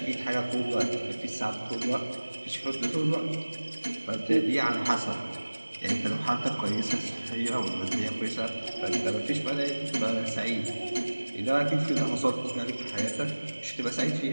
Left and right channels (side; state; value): both; inverted; correlation -1.00